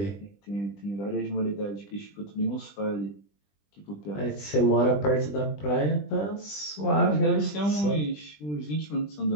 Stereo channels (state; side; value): late; right; 20 ms